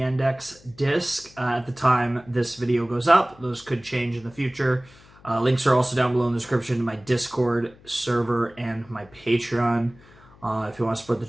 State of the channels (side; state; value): left; noise; hum, 25 dB below the sound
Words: disc at the time this video goes up. Those could change in the future. Links are also down below in the description to my Discord server and my Patreon. If you want to support the